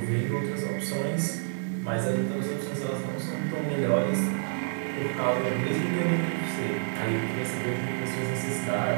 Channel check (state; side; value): silent; left; 59 dB below the other